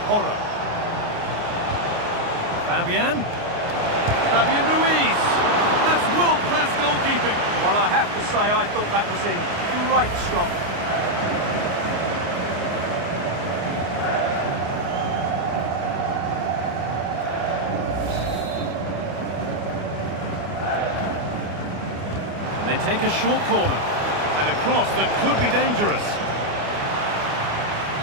Porro. Fabian. Fabian Ruiz. That's world-class goalkeeping. Well, I have to say, I thought that was in. Great stop. They take a short corner and a cross that could be dangerous.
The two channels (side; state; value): left; late; 29 ms